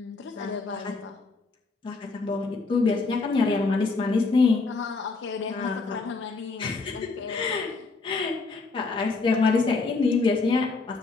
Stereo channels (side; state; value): right; quieter; 3.9 dB